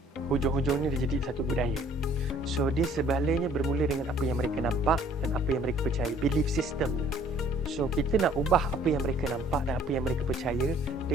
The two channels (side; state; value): both; normal; correlation 0.57